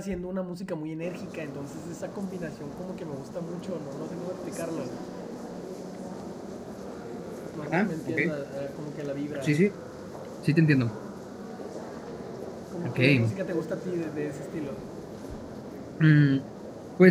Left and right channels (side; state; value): both; identical; correlation 1.00